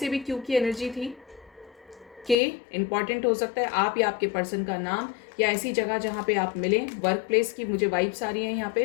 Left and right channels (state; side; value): drops out; right; at 2.4 s